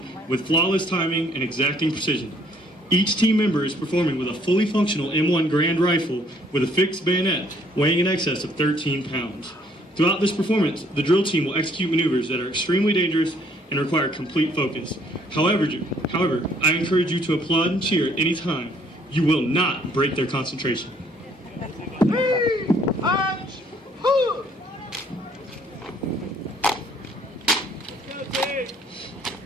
with flawless timing and exacting precision. Each team member is performing with a fully functional M1 Grand Rifle with a fixed bayonet weighing in excess of 13 pounds. Throughout this performance, the drill team will execute maneuvers that are extremely dangerous and require complete focus. However, I encourage you to applaud and cheer at any time. You will not break their concentration.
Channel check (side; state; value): both; normal; correlation 0.63